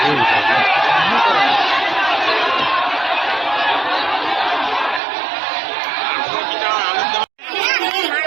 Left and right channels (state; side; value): drops out; left; at 5.0 s